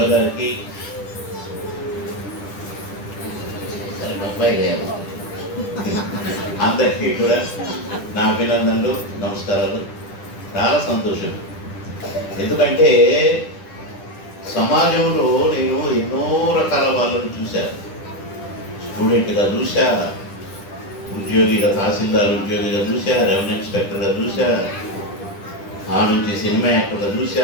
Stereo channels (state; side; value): late; right; 10 ms